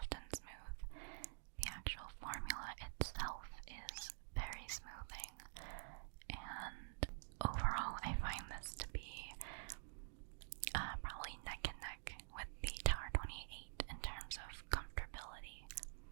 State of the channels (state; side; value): silent; left; digital silence